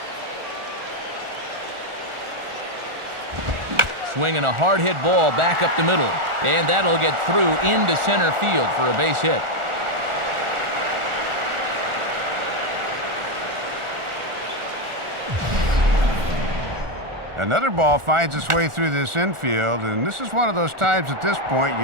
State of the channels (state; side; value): late; left; 1.4 ms